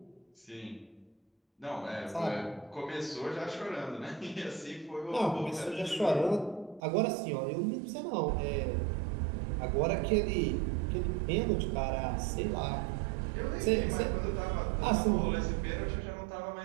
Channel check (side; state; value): left; drops out; at 6.8 s